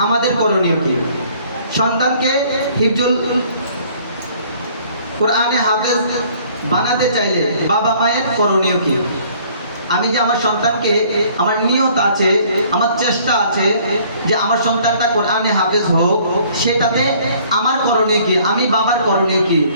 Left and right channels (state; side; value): inverted; both; correlation -0.57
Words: আমাদের করণীয় কি? সন্তানকে হিফজুল কোরআনে হাফেজ বানাতে চাইলে বাবা মায়ের করণীয় কি? আমি যে আমার সন্তানকে, আমার নিয়ত আছে, আমার চেষ্টা আছে যে আমার সন্তানটা কোরআনে হাফেজ হোক, সেটাতে আমার করণীয় কি? আমি বাবার করণীয় কি?